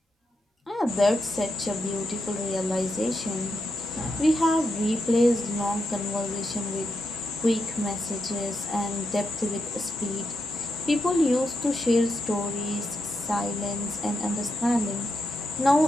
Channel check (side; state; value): both; normal; correlation 0.84